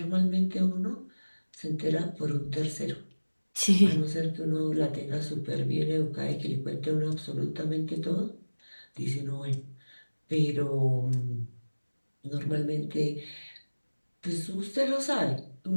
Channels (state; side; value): inverted; both; correlation -1.00